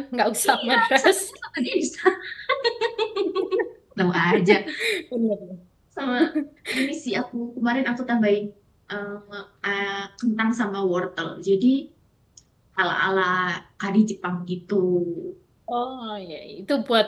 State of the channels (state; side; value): identical; both; correlation 1.00